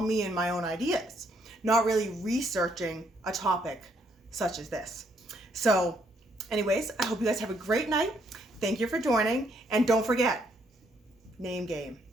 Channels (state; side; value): normal; both; correlation 0.71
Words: and my own ideas, not really researching a topic such as this. So anyways, I hope you guys have a great night. Thank you for joining. And don't forget, name game,